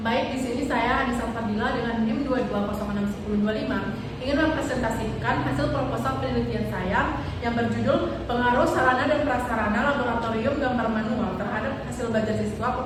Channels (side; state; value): both; identical; correlation 1.00